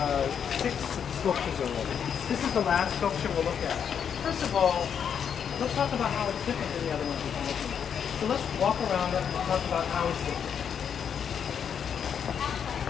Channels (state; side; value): quieter; right; 7.7 dB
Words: sculptures already. This is the last sculpture we'll look at. First of all, let's talk about how it's different than the other ones we've been looking at. So let's walk around it and talk about how it's different.